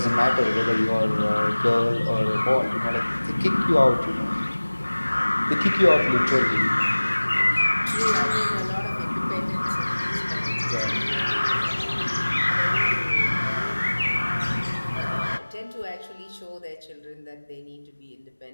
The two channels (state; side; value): inverted; both; correlation -1.00